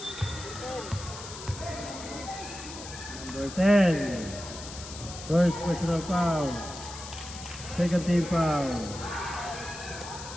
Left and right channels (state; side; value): noise; left; hiss, 12 dB below the sound